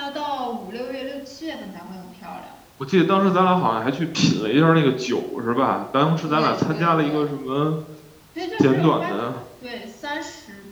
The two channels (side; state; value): both; identical; correlation 1.00